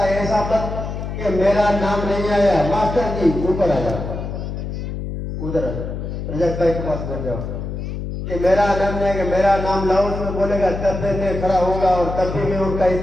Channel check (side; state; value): left; noise; hum, 6 dB below the sound